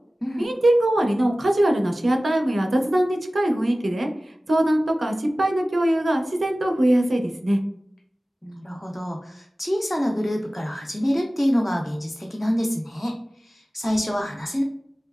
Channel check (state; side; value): normal; both; correlation 0.97